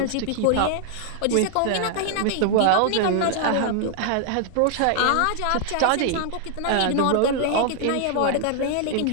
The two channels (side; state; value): both; different; correlation 0.00